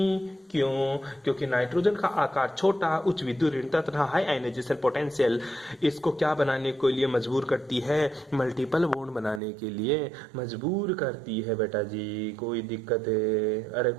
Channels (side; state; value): left; drops out; at 9.4 s